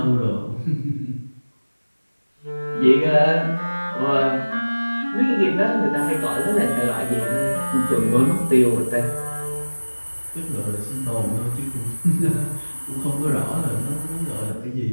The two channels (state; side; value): inverted; both; correlation -1.00